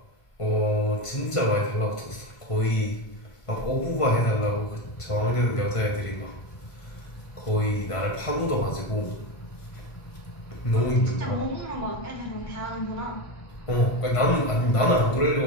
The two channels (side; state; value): right; late; 1.5 ms